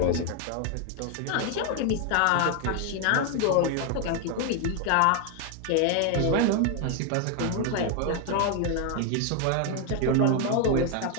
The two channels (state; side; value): different; both; correlation 0.01